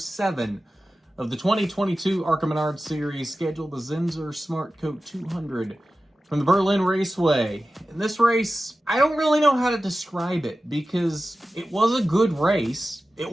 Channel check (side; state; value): both; normal; correlation 0.94